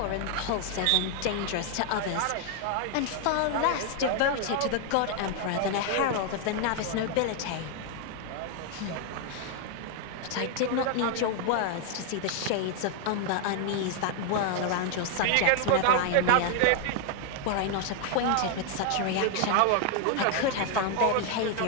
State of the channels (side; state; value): both; different; correlation 0.00